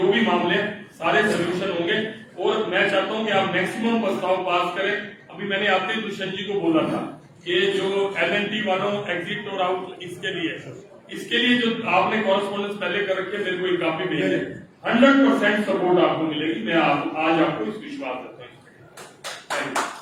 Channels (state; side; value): identical; both; correlation 1.00